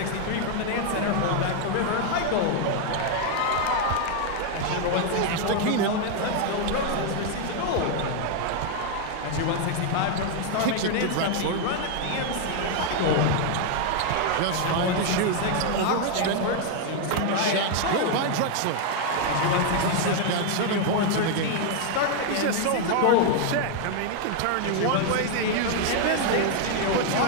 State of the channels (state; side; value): different; both; correlation 0.00